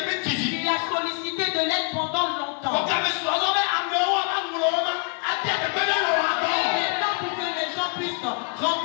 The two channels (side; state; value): right; quieter; 34.2 dB